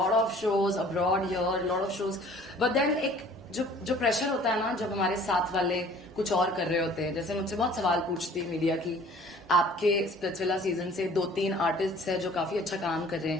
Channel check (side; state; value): both; normal; correlation 0.51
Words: of shows abroad here, lot of shows, but then एक जो प्रेशर होता है ना, जब हमारे साथ वाले कुछ और कर रहे होते हैं, जैसे मुझसे बहुत सवाल पूछती है मीडिया की, आपके स्प्लिट्सविला सीजन से 2-3 आर्टिस्ट है जो काफी अच्छा काम कर रहे